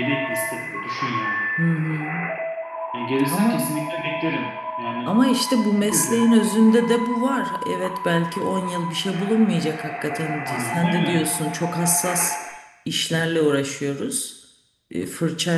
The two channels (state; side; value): identical; both; correlation 1.00